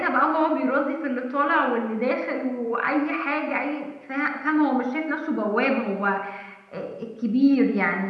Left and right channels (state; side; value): identical; both; correlation 1.00